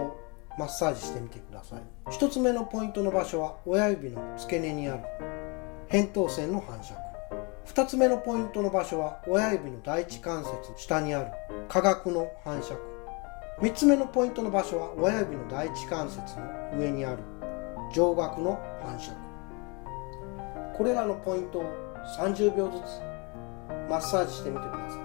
マッサージしてみてください。1つ目のポイントの場所は親指の付け根にある扁桃腺の反射区。2つ目のポイントの場所は親指の第一関節下にある下顎の反射区。3つ目のポイントの場所は親指の第一関節の上にある上顎の反射区。これらのポイントを30秒ずつマッサージしてみてくださ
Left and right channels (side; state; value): right; quieter; 30.7 dB